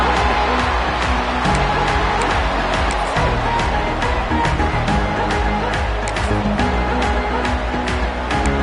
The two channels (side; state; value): both; identical; correlation 1.00